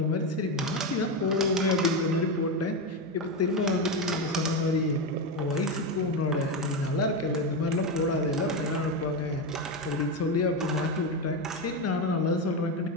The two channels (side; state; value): both; normal; correlation 0.12